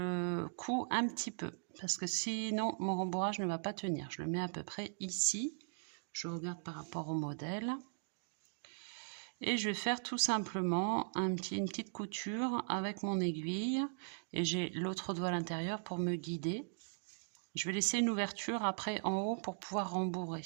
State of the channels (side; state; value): left; silent; digital silence